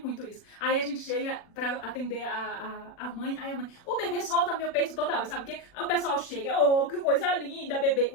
isso, aí a gente chega pra atender a mãe, aí a mãe, o bebê solta meu peito toda hora, sabe o quê? Aí o pessoal chega, oh, que coisa linda, bebê,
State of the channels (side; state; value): right; late; 40 ms